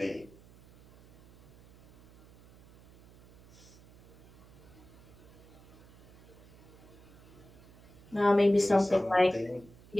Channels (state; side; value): noise; right; hum, 24 dB below the sound